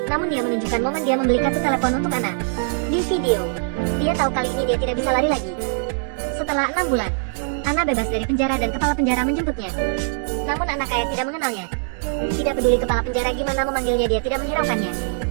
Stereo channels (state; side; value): silent; left; 64 dB below the other